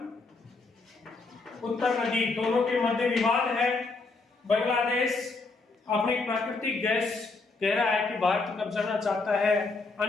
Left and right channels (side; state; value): right; quieter; 3.8 dB